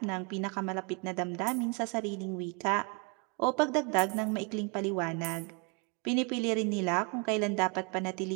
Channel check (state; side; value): quieter; left; 33.9 dB